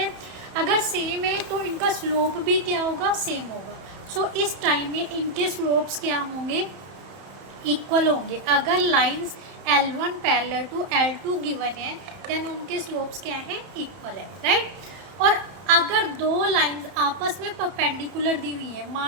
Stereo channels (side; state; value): left; late; 31 ms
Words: अगर सेम है तो इनका स्लोप भी क्या होगा, सेम होगा। सो इस टाइम में इनके स्लोप्स क्या होंगे, इक्वल होंगे। अगर lines L1 parallel to L2 given है देन उनके स्लोप्स क्या हैं, इक्वल है, राइट। और अगर दो लाइंस आपस में परपेंडिकुलर दी हुई है,